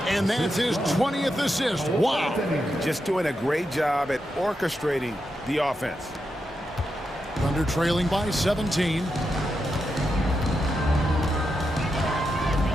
And that's his 20th assist. Wow. Just doing a great job at orchestrating the offense. Thunder trailing by 17.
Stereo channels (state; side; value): normal; both; correlation 0.86